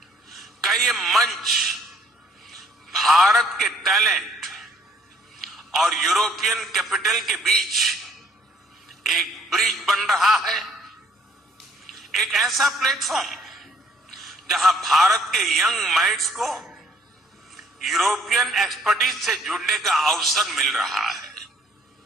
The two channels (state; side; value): normal; both; correlation 0.62